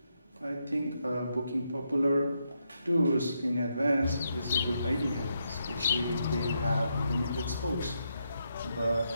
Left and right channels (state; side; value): inverted; both; correlation -0.81